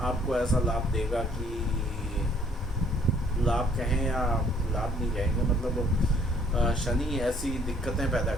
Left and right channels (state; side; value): normal; both; correlation 0.62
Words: आपको ऐसा लाभ देगा कि लाभ कहें या लाभ नहीं कहेंगे, मतलब शनि ऐसी दिक्कतें पैदा